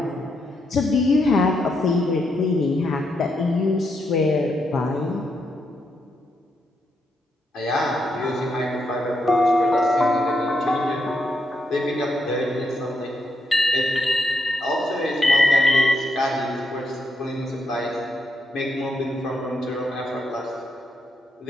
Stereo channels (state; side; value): normal; both; correlation 0.80